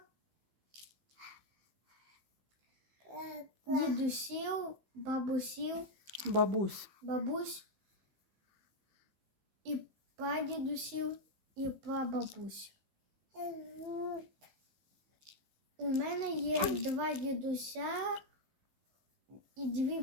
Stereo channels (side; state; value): left; late; 15 ms